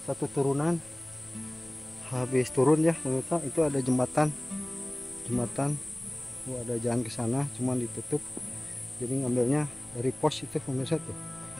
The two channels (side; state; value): left; noise; rumble, 25 dB below the sound